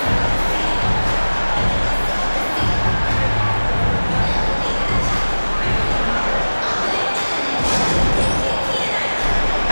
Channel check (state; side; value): inverted; both; correlation -1.00